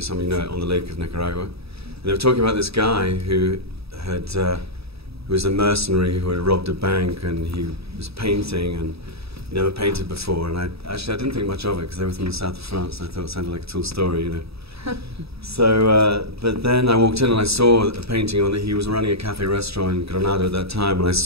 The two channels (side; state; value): left; late; 0.77 ms